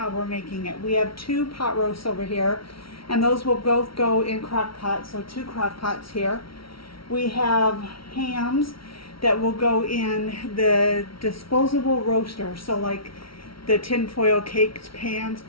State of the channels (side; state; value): right; late; 0.75 ms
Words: we're making it. We have 2 pot roasts over here, and those will both go in crock pots, so 2 crock pots here. We have hams that will go in the disposable roaster, so like the tinfoil caked pans,